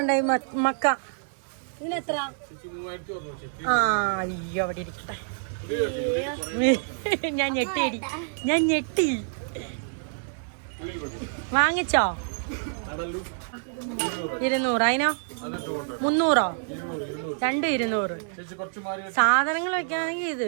മക്ക. ഇതിനെത്ര? ആ അയ്യോ അവിടെ ഇരിക്കട്ടെ. ഞാൻ ഞെട്ടി. വാങ്ങിച്ചോ? 200. അതിനോ 300? 2 200. സാധനങ്ങൾ വെക്കാണെങ്കിൽ ഇത്.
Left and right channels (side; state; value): left; silent; digital silence